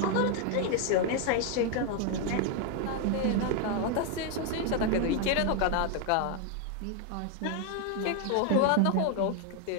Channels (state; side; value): different; both; correlation 0.01